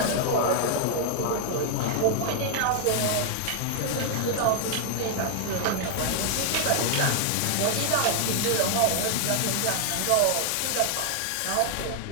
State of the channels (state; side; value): different; both; correlation 0.00